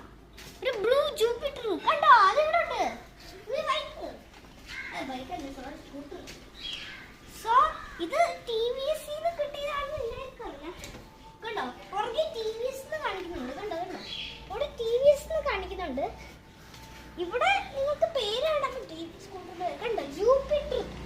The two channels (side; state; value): both; identical; correlation 1.00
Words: ഒരു ബ്ലൂ ജൂപ്പിറ്റർ കണ്ടോ? അത് ഇവിടെ ഉണ്ട്. സോ ഇത് ടിവിഎസ് കിട്ടിയതാണെന്ന് എനിക്കറിയാം. കണ്ടോ പുറകെ ടിവിഎസ് കാണിക്കുന്നുണ്ട്. കണ്ടോ കണ്ടോ ഇവിടെ ടിവിഎസ് കാണിക്കുന്നുണ്ട്. ഇവിടെ നിങ്ങൾക്ക് പേര് കാണാൻ പറ്റും. സ്കൂട്ടർ കണ്ടോ ജൂപ്പിറ്റർ.